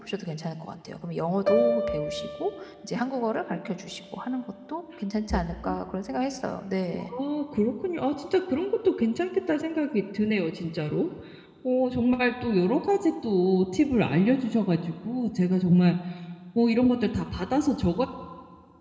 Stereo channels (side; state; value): both; identical; correlation 1.00